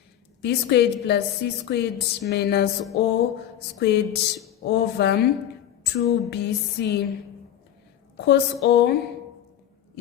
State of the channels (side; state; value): right; quieter; 10.8 dB